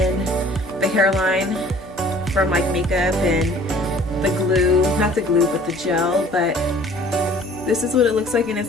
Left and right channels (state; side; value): normal; both; correlation 0.51